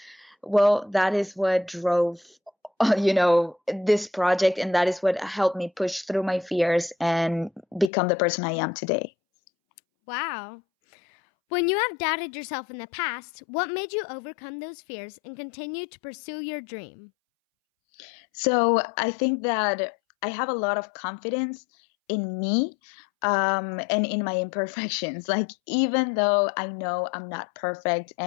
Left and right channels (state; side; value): drops out; right; at 7.9 s